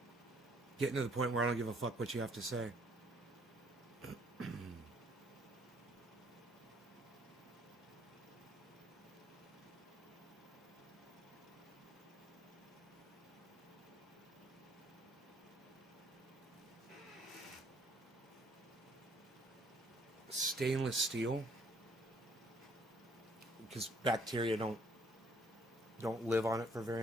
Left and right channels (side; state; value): both; normal; correlation 0.63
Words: Getting to the point where I don't give a fuck what you have to say. Stainless steel, because bacteria don't live on it for very